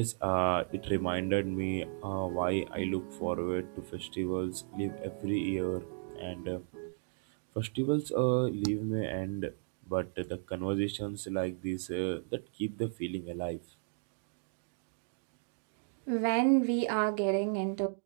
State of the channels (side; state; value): left; silent; digital silence